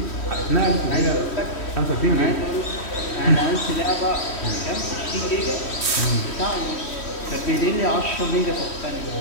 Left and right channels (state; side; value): late; right; 3.1 ms